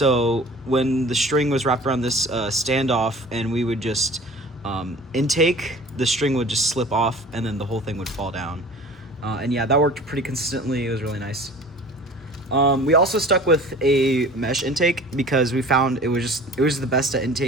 when the string was wrapped around this standoff and we would just intake, the string would just slip off and then the whole thing would fall down. And yeah, that worked pretty consistently. It was really nice. We also stuck with a mesh intake because we found it was the best at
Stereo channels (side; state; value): both; normal; correlation 0.43